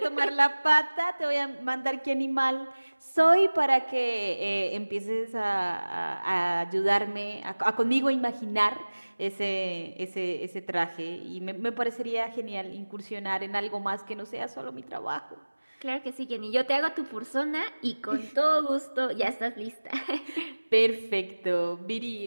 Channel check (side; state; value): both; inverted; correlation -1.00